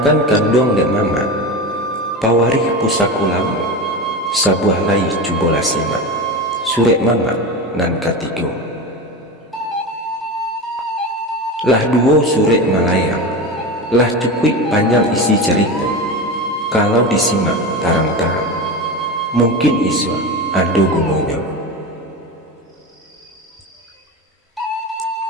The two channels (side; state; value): both; normal; correlation 0.23